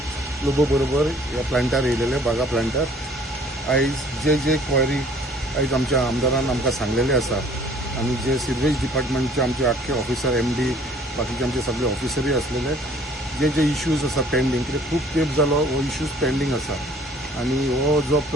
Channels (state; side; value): normal; both; correlation 0.55